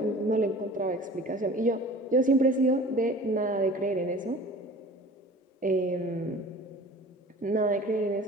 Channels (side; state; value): both; normal; correlation 0.43